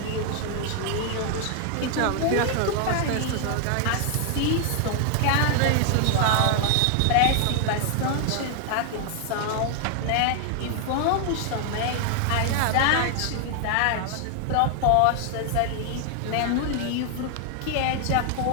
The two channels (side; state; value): both; different; correlation 0.00